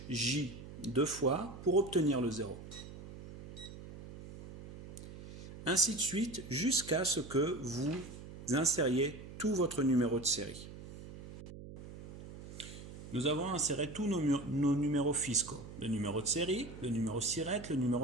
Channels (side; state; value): right; noise; hum, 14 dB below the sound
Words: J 2 fois pour obtenir le 0. Ainsi de suite jusqu'à ce que vous insériez tout votre numéro de série. Nous avons inséré tous nos numéros fiscaux, le numéro de série, le numéro SIRET, le